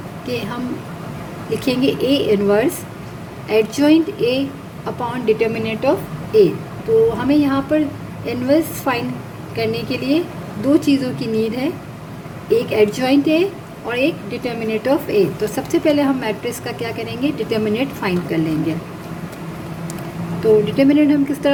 कि हम लिखेंगे A inverse adjoint A upon determinant of A. तो हमें यहाँ पर इनवर्स फाइंड करने के लिए दो चीज़ों की नीड है, एक एडजॉइंट ए और एक डिटर्मिनेंट ऑफ ए। तो सबसे पहले हम मैट्रिक्स का क्या करेंगे, डिटर्मिनेंट फाइंड कर लेंगे। तो डिटर्मिनेंट हम किस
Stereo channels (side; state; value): both; identical; correlation 1.00